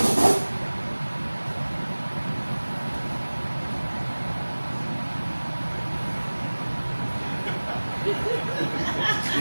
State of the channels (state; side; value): inverted; both; correlation -1.00